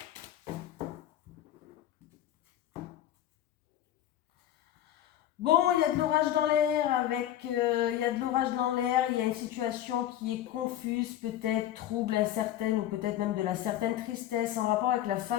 Bon, il y a de l'orage dans l'air il y a de l'orage dans l'air, il y a une situation qui est confuse, peut-être trouble, incertaine ou peut-être même de la certaine tristesse en rapport avec la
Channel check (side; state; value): right; quieter; 12.1 dB